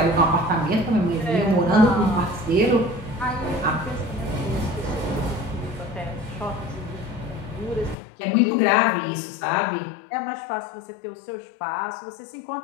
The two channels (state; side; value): drops out; right; at 8.0 s